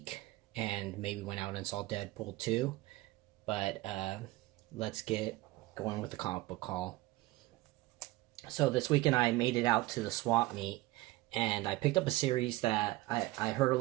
and maybe went out and saw Deadpool 2. But let's get going with the comic book haul. So this weekend I made it out to the swap meet and I picked up a series that I heard a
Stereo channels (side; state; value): left; quieter; 19.1 dB